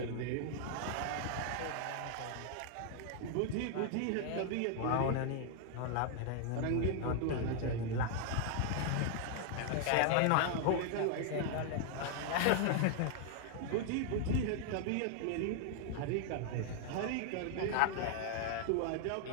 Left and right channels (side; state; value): both; different; correlation 0.00